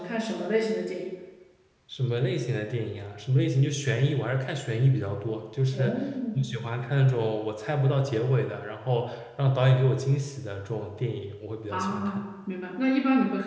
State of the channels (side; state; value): both; identical; correlation 1.00